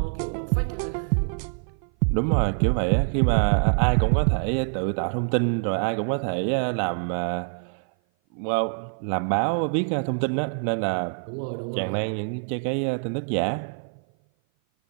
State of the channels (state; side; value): silent; left; 56 dB below the other